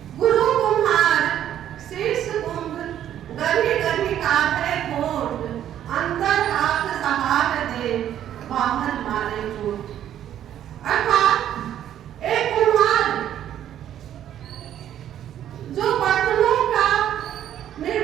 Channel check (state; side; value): quieter; left; 10.9 dB